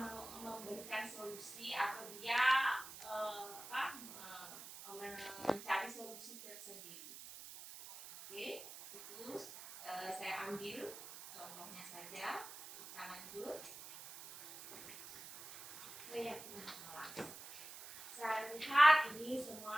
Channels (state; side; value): noise; right; hiss, 13 dB below the sound